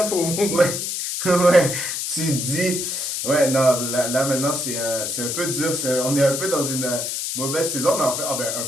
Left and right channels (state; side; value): noise; left; hiss, 3 dB below the sound